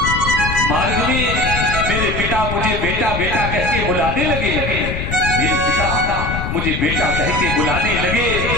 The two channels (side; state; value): left; noise; rumble, 4 dB below the sound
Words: में मेरे पिता मुझे बेटा बेटा कह के बुलाने लगे। मेरे पिता मुझे बेटा कह के बुलाने लगे।